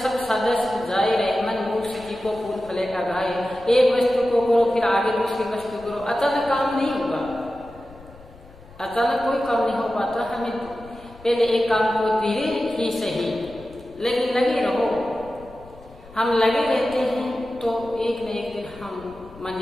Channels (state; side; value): noise; left; rumble, 22 dB below the sound